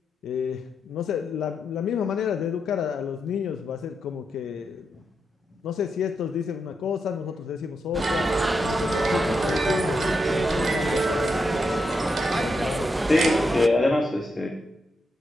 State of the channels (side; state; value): both; normal; correlation 0.84